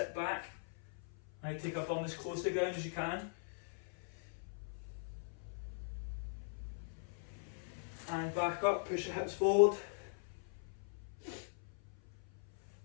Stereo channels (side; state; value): right; silent; 50 dB below the other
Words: back, right, take our bum as close to the ground as you can. And back up, push your hips forward.